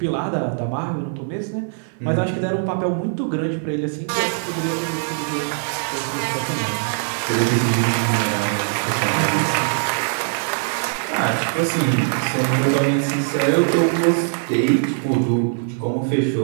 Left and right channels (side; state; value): left; silent; 65 dB below the other